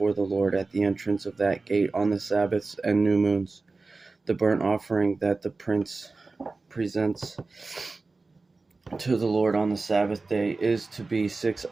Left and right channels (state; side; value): quieter; left; 3.7 dB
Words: the Lord at the entrance of that gate on the Sabbaths and new moons. The burnt offering that the prince presents to the Lord on the Sabbath day is to be 6